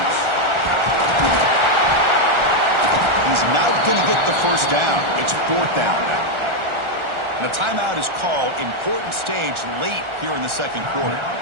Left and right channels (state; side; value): late; left; 1.4 ms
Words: He's not going to get the first down. It's fourth down now. And a timeout is called. Important stage late here in the second quarter.